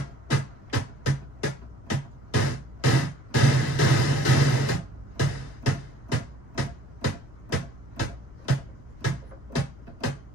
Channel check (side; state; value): left; noise; rumble, 22 dB below the sound